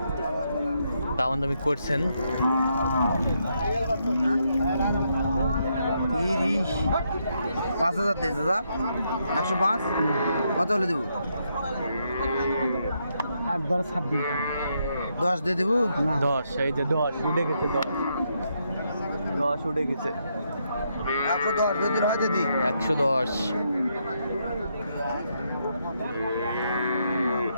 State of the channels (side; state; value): both; inverted; correlation -0.78